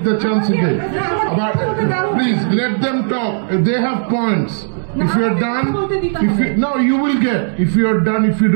the chance again. But please let them talk. They have points. If you are done, no, you will get. If you are done, if you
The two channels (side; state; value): left; silent; digital silence